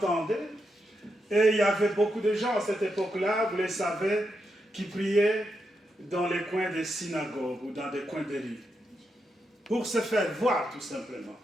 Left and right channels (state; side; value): normal; both; correlation 0.84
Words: Et il y avait beaucoup de gens à cette époque-là, vous le savez, qui priaient dans les coins des synagogues ou dans des coins des rues. Pour se faire voir, tout simplement.